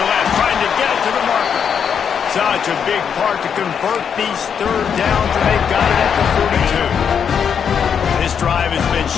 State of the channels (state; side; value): quieter; right; 7.4 dB